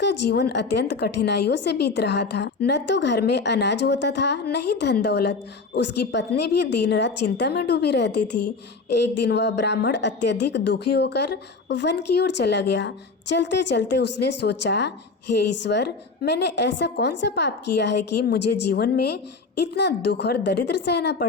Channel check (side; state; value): right; quieter; 4.2 dB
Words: जीवन अत्यंत कठिनाइयों से बीत रहा था। न तो घर में अनाज होता था, न ही धन दौलत। उसकी पत्नी भी दिन रात चिंता में डूबी रहती थी। एक दिन वह ब्राह्मण अत्यधिक दुखी होकर वन की ओर चला गया। चलते चलते उसने सोचा, हे ईश्वर, मैंने ऐसा कौन सा पाप किया है कि मुझे जीवन में इतना दुख और दरिद्र सहना